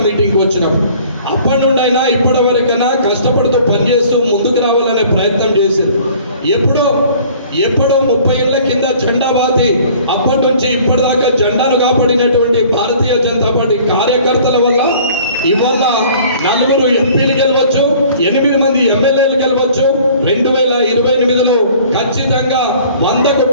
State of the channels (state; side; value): inverted; both; correlation -0.52